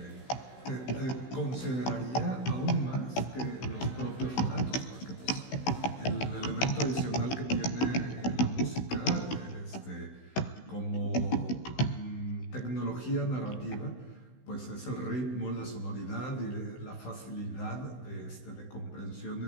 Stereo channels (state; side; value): late; right; 16 ms